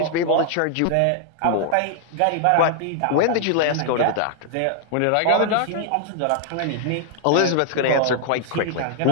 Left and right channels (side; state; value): both; different; correlation 0.00